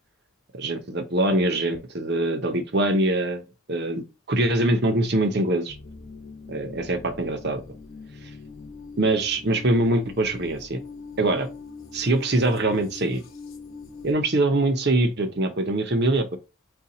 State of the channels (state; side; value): normal; both; correlation 0.41